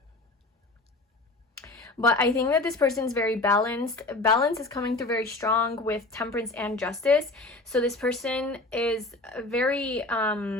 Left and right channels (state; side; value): quieter; right; 3.0 dB